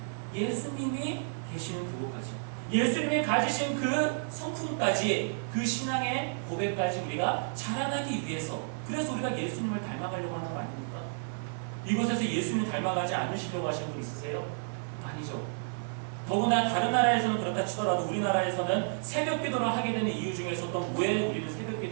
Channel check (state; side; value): silent; left; 57 dB below the other